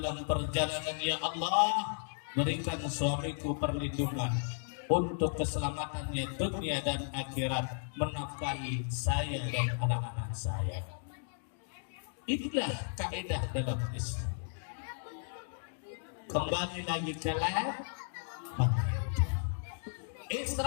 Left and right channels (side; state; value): right; silent; digital silence